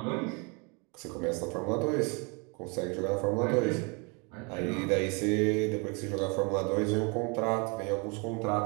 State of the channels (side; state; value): left; quieter; 32.3 dB